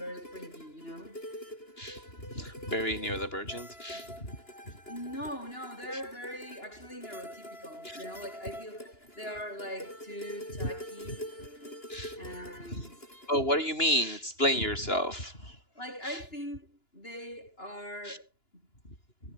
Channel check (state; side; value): late; right; 2.9 ms